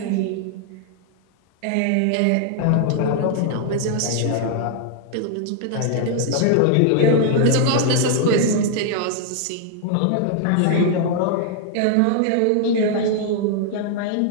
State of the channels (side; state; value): both; different; correlation 0.00